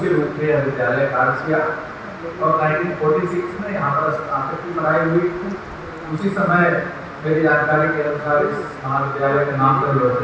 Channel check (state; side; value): identical; both; correlation 1.00